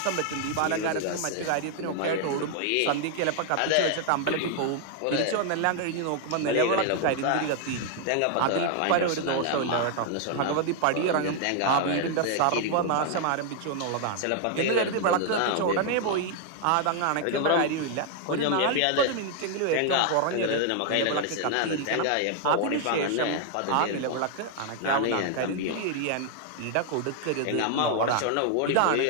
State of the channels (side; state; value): both; different; correlation 0.00